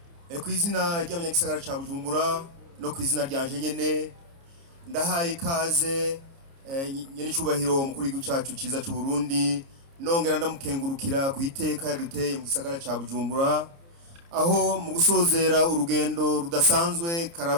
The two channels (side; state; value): left; late; 29 ms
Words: Kwizina ry'abanyagisagara ca Bujumbura no kwizina ryanje nyene ndahaye ikaze nyene cubahiro mukuru w'igihugu cacu ciza c'u Burundi, nongera ndamukengurukira ku iteka yaduteye mu gisagara ca Bujumbura, aho mu gusozera urugendo rudasanzwe